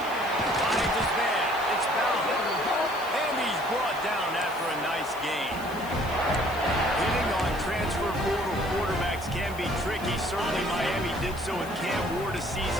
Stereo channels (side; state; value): left; noise; hiss, 18 dB below the sound